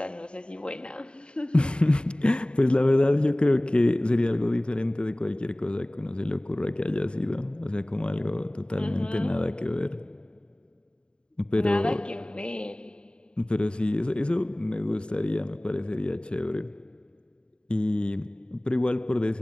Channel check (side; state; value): right; late; 0.052 ms